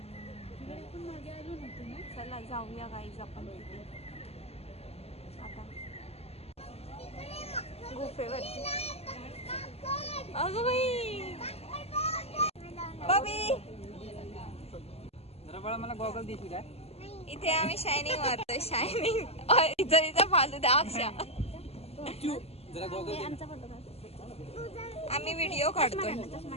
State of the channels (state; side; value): late; right; 0.29 ms